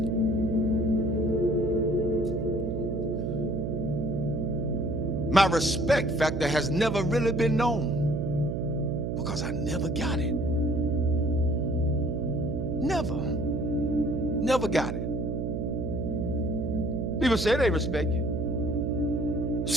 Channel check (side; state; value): right; noise; hum, 1 dB below the sound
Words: My respect factor has never really been known because I never got it. Never got it. People say they respect you.